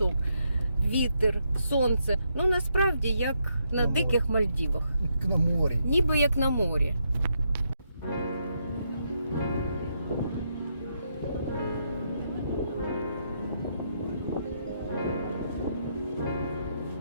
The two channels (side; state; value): both; inverted; correlation -0.79